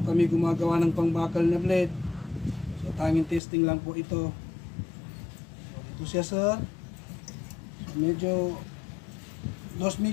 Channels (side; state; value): right; drops out; at 3.4 s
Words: kami gumagawa ng pangbakal na blade. So tanging testing lang po ito. So ito siya sir. So, medyo dos